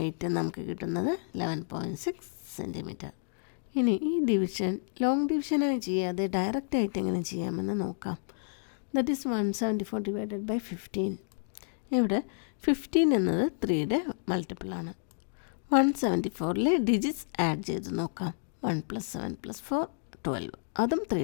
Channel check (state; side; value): silent; right; digital silence